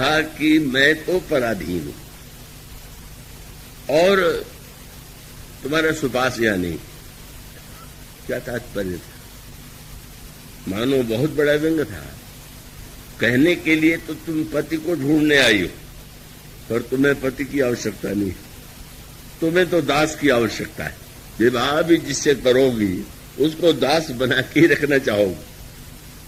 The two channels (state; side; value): identical; both; correlation 1.00